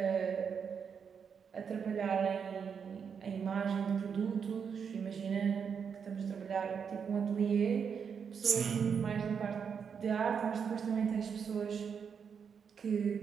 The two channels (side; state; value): left; quieter; 6.7 dB